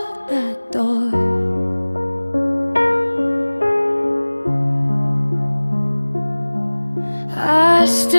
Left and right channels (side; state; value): both; inverted; correlation -1.00